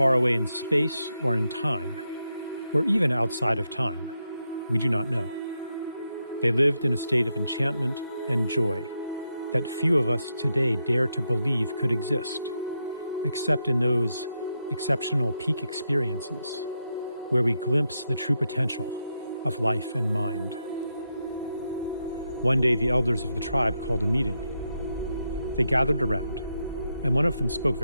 away in space or in time, or even outside of time, we do not know. They lived in a state of enchantment and joy that few of us today dare to believe could exist, except in those exceptional peak experiences where we glimpse the true potential of life and mind. One day, the elders of the tribe called a meeting. They gathered around, and one of them spoke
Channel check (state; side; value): inverted; both; correlation -0.84